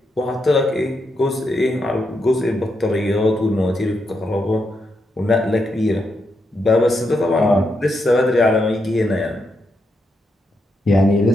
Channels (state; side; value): normal; both; correlation 0.82